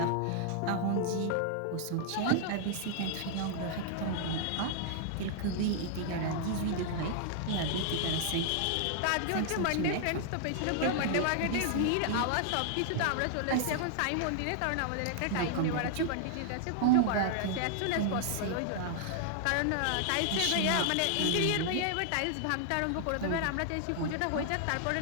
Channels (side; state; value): both; different; correlation -0.01